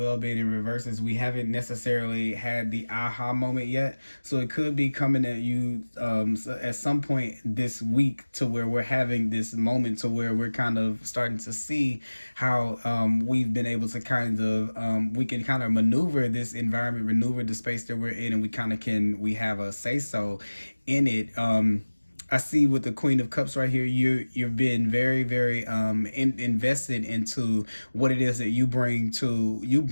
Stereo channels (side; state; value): both; inverted; correlation -1.00